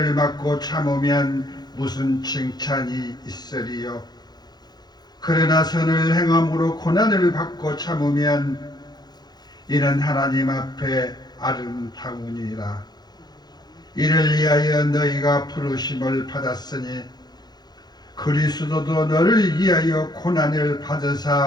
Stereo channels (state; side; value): late; right; 0.20 ms